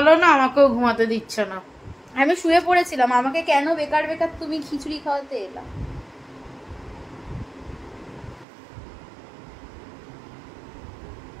ভালো না, আমাকেও ঘুমাতে দিচ্ছে না। আমি শুয়ে পড়েছিলাম, আমাকে কেন বেকার বেকার তুমি খিচুড়ি খাওয়াতে এলা?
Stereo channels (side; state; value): left; drops out; at 8.5 s